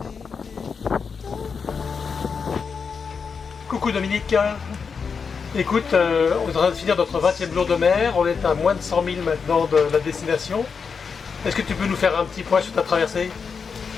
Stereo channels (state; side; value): quieter; right; 5.7 dB